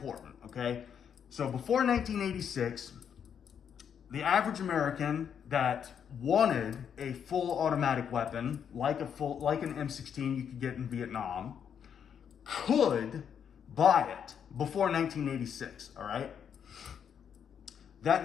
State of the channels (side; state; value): right; quieter; 8.0 dB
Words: okay? So before 1986, the average American that wanted a full automatic weapon, like an M16 you could get in Vietnam, could buy it before 1986, all right?